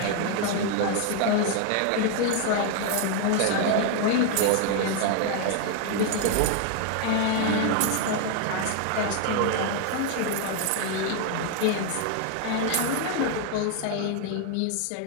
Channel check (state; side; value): different; both; correlation 0.00